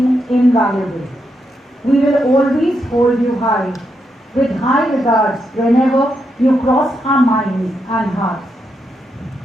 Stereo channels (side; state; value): both; normal; correlation 0.82